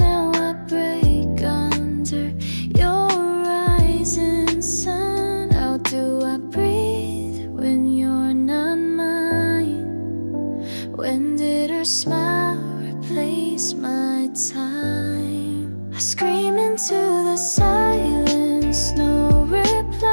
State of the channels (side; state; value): both; inverted; correlation -1.00